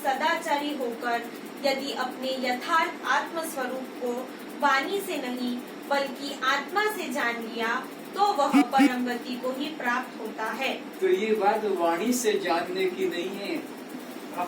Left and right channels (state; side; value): identical; both; correlation 1.00